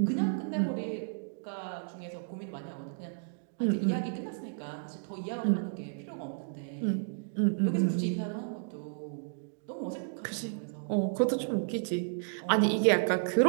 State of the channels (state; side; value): silent; left; digital silence